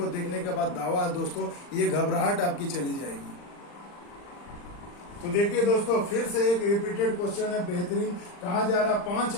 देखने के बाद दावा है दोस्तों, ये घबराहट आपकी चली जाएगी। तो देखिए दोस्तों, फिर से एक रिपीटेड क्वेश्चन है, बेहतरीन। कहा जा रहा 5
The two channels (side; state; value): right; late; 40 ms